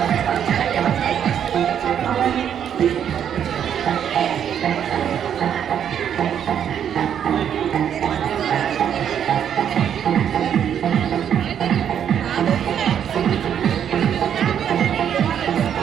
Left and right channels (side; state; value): left; quieter; 9.0 dB